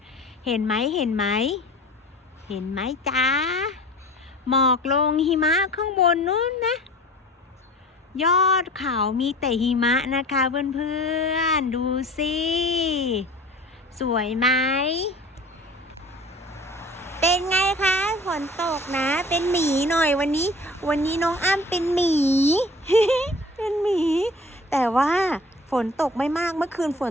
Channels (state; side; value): normal; both; correlation 0.42